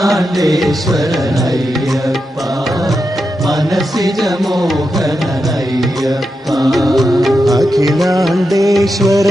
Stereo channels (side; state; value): both; normal; correlation 0.87